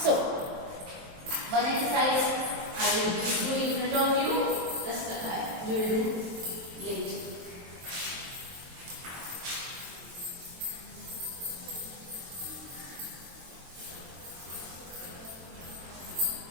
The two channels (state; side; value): late; left; 23 ms